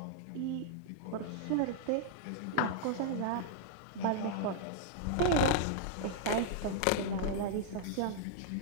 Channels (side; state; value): both; different; correlation -0.01